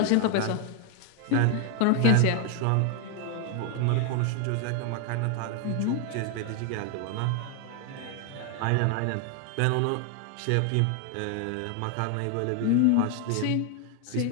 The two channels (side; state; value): both; different; correlation 0.01